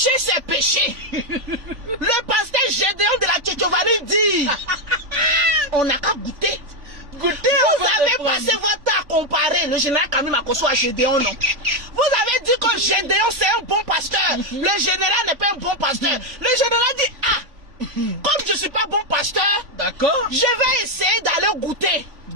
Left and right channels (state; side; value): late; left; 3.5 ms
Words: c'est péché. Le pasteur Gédéon de la Tchétchovanie dit, on n'a qu'à goûter. Vous avez passé votre temps à comparer le général Camille Makosso à Gédéon, non? Vous avez dit que Gédéon c'est un bon pasteur. Le général n'est pas un bon pasteur. Le général dit, ah, comme je ne suis pas bon pasteur, d'accord, je vais essayer d'aller goûter.